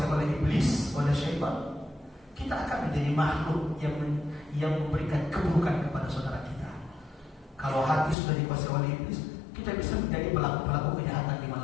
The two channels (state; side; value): drops out; right; at 8.2 s